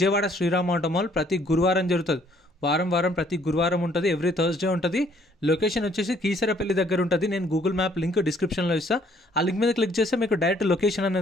శ్రీరామ్ ఆటో మాల్ ప్రతి గురువారం జరుగుతుంది. వారం ప్రతి గురువారం ఉంటుంది. ఎవ్రీ థర్స్డే ఉంటుంది. లొకేషన్ వచ్చేసి కీసరపల్లి దగ్గర ఉంటుంది. నేను గూగుల్ మ్యాప్ లింక్ డిస్క్రిప్షన్లో ఇస్తాను. ఆ లింక్ మీద క్లిక్ చేస్తే మీకు డైరెక్ట్ లొకేషన్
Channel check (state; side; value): normal; both; correlation 0.63